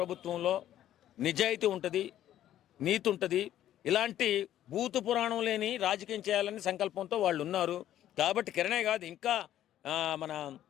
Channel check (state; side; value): quieter; right; 12.1 dB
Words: నిజాయితీ ఉంటుంది, నీతి ఉంటుంది. ఇలాంటి భూత పురాణం లేని రాజకీయం చేయాలని సంకల్పంతో వాళ్ళు ఉన్నారు. కాబట్టి కిరణే కాదు, ఇంకా మన